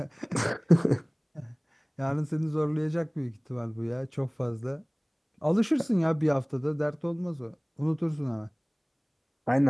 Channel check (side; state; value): both; identical; correlation 1.00